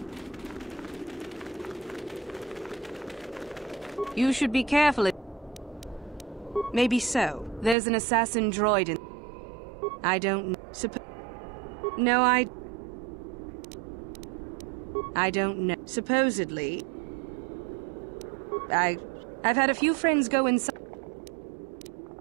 You should be careful. Maybe so. There's an assassin droid in... I don't know. No, I don't know. Supposedly... I've had a few friends go inside.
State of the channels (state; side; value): drops out; left; at 7.8 s